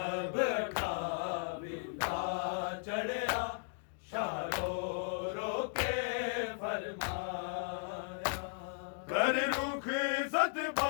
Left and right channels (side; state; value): right; silent; digital silence